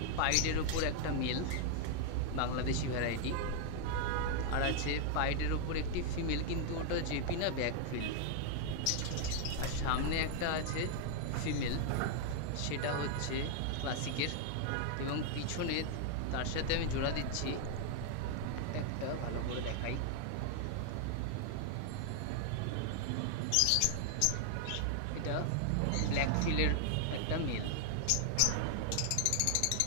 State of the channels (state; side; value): different; both; correlation 0.00